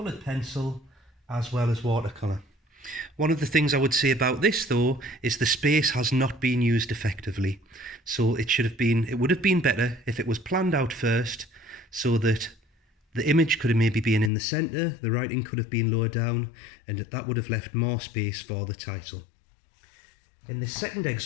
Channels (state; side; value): drops out; right; at 14.3 s